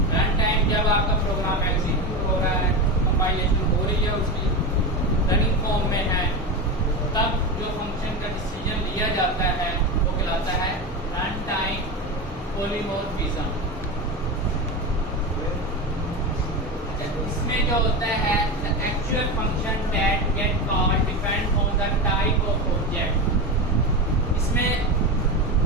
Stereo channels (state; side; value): normal; both; correlation 0.20